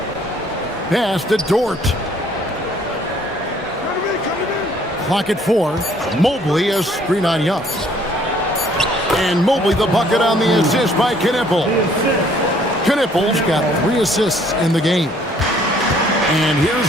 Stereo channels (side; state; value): both; normal; correlation 0.61